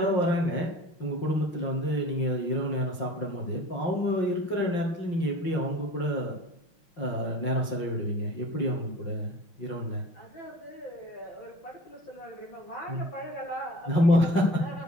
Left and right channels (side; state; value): right; late; 5.6 ms